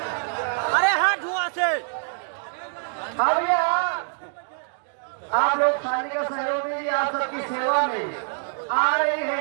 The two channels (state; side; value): silent; left; digital silence